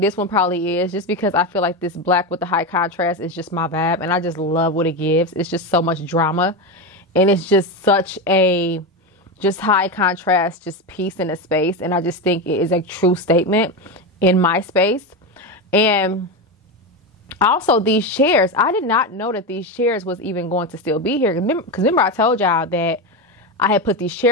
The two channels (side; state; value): both; normal; correlation 0.15